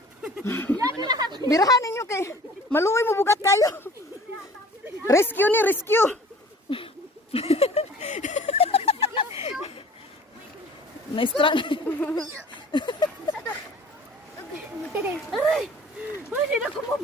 Birahan ninyo kay maluoy mo bugat kayo. Rescue ni rescue. Naistra. Aray! Ay, hindi na ko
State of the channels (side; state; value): both; normal; correlation 0.48